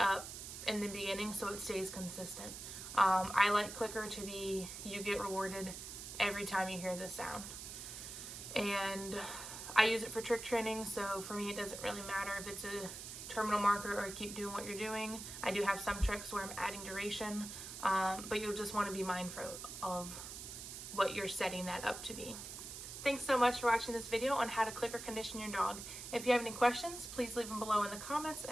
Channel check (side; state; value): right; noise; hiss, 9 dB below the sound